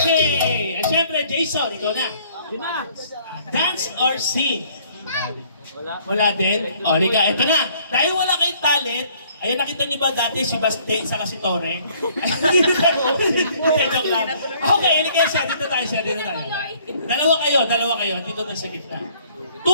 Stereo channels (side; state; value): both; inverted; correlation -0.60